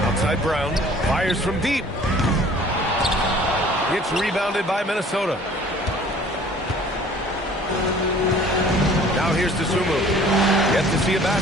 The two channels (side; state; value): both; normal; correlation 0.51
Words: Outside Brown. Fires from deep. Gets rebounded by Minnesota. Now here's Dosunmu. Yet to see a